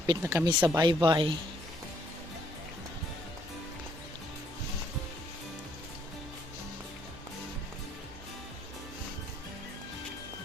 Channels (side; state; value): both; normal; correlation 0.67